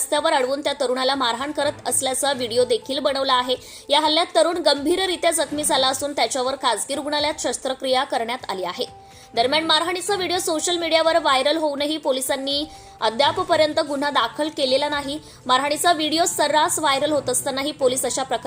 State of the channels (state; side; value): identical; both; correlation 1.00